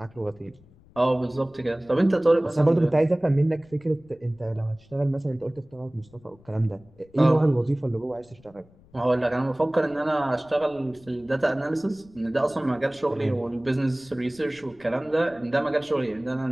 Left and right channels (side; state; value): left; noise; rumble, 27 dB below the sound